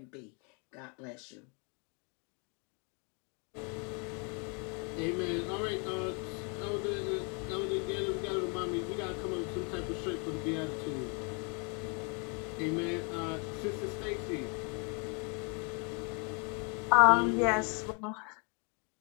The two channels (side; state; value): right; quieter; 35.1 dB